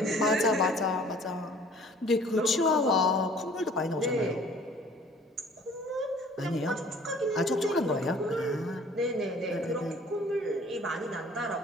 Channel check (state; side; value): normal; both; correlation 0.52